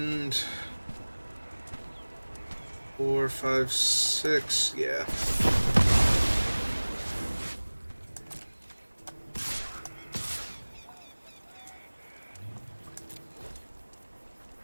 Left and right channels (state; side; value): inverted; both; correlation -1.00